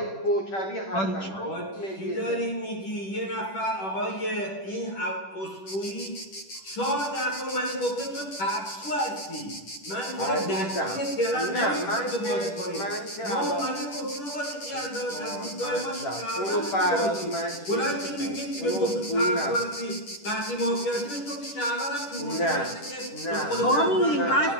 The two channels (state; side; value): late; right; 10 ms